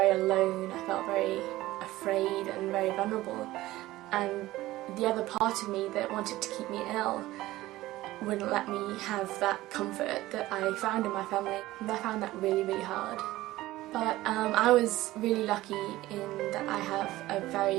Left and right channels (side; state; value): left; quieter; 17.0 dB